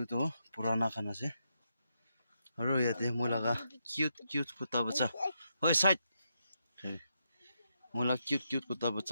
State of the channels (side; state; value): both; inverted; correlation -0.82